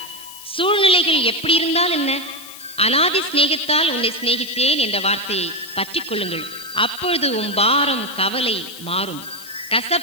சூழ்நிலைகள் எப்படி இருந்தால் என்ன, அனாதி சிநேகத்தால் உன்னை சிநேகித்தேன் என்ற வார்த்தையை பற்றி கொள்ளுங்கள். அப்பொழுது உன் பாரம் கவலை மாறும்,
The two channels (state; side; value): noise; left; hiss, 16 dB below the sound